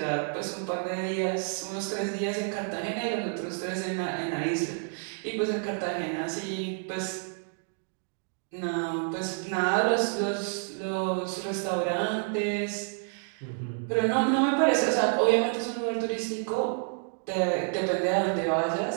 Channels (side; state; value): left; silent; 56 dB below the other